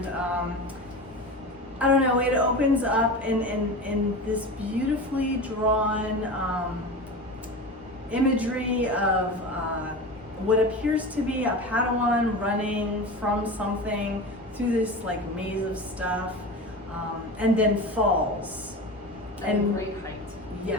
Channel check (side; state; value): both; normal; correlation 0.29